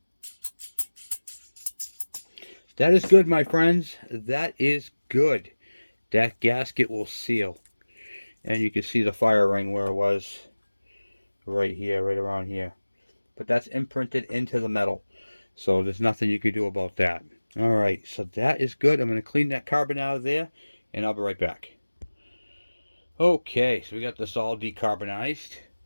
That is good, my friends. That is good. That gasket will seal. And you can see the fire ring where it was right here, right around here. But that's imprinted into the metal. So there's nothing you can do about that. Alright, so that is good. I'm going to clean that carbon out of there, and I'll be right back. Okay, so we got this all decarbonized.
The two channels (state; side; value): inverted; both; correlation -1.00